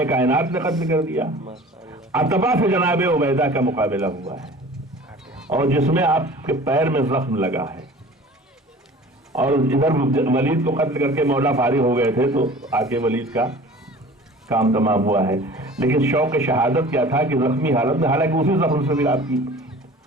کائنات نے قتل کر دیا، عتبہ سے جناب عبیدہ کا مقابلہ ہوا ہے، اور جس میں آپ کے پیر میں زخم لگا ہے، اور ادھر ولید کو قتل کر کے مولا فارغ ہو گئے تھے تو آ کے ولید کا کام تمام ہوا ہے۔ لیکن شوق شہادت کیا تھا کہ زخمی حالت میں، حالانکہ اسی زخم سے بھی آپ کی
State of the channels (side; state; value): both; normal; correlation 0.43